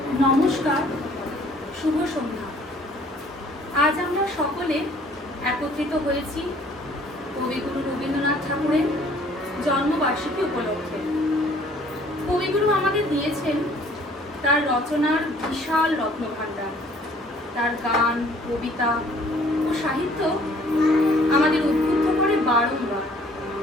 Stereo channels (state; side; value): normal; both; correlation 0.57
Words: নমস্কার, শুভ সন্ধ্যা। আজ আমরা সকলে একত্রিত হয়েছি কবিগুরু রবীন্দ্রনাথ ঠাকুরের জন্মবার্ষিকী উপলক্ষে। কবিগুরু আমাদের দিয়েছেন তার রচনার বিশাল রত্নভাণ্ডার। তার গান, কবিতা ও সাহিত্য আমাদের উদ্বুদ্ধ করে বারংবার।